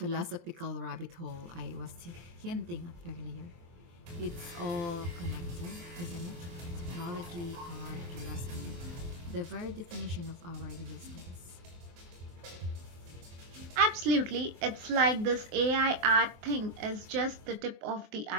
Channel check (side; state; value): left; late; 23 ms